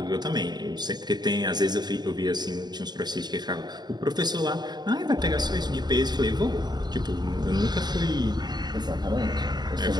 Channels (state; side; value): late; left; 0.20 ms